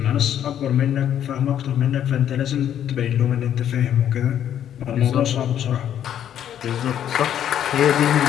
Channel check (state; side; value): quieter; right; 10.1 dB